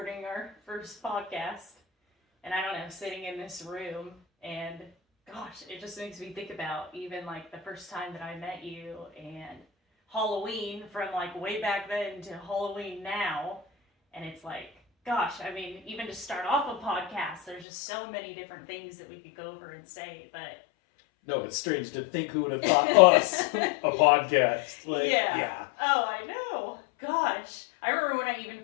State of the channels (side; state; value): right; drops out; at 17.7 s